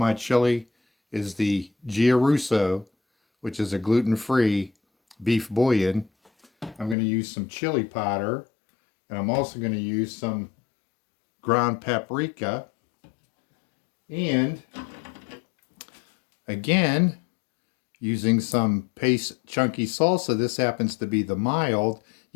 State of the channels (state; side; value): drops out; right; at 7.0 s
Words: chili is the Gia Russo, which is a gluten-free beef bouillon. I'm going to use some chili powder, and I'm also going to use some ground paprika, and again using some paste chunky salsa. This happens to be the mild.